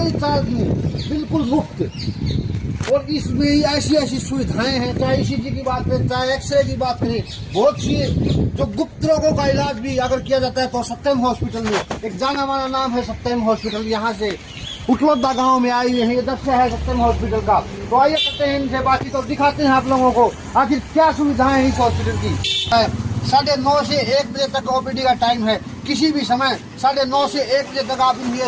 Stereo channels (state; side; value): identical; both; correlation 1.00